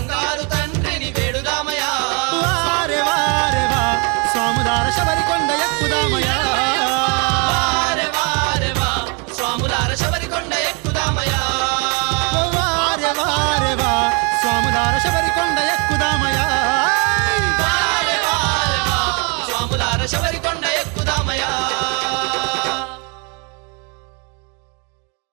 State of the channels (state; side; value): quieter; left; 33.9 dB